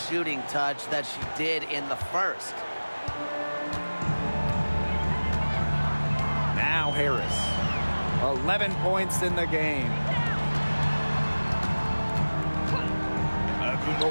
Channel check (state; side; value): inverted; both; correlation -1.00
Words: touch that she did in the first. Now Harris. 11 points in the game.